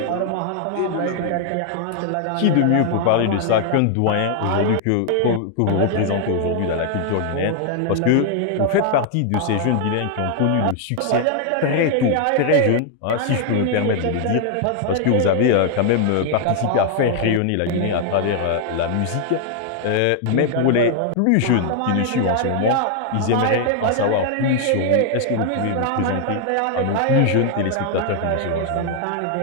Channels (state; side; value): different; both; correlation 0.00